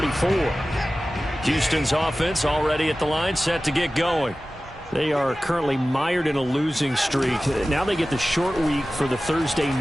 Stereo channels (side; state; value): both; normal; correlation 0.96